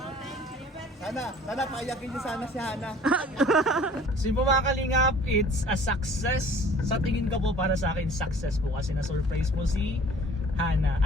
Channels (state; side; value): normal; both; correlation 0.50